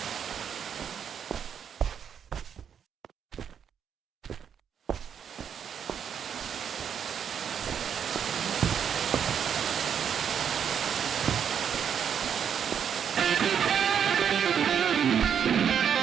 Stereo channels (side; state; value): left; quieter; 8.0 dB